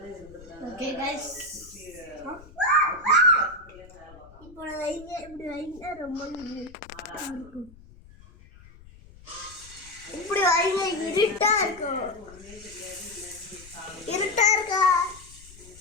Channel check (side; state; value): left; noise; rumble, 21 dB below the sound